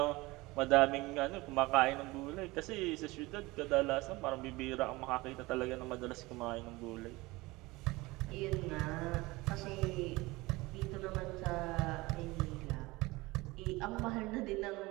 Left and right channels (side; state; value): left; quieter; 21.6 dB